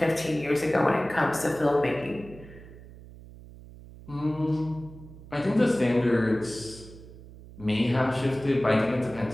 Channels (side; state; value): right; noise; hum, 18 dB below the sound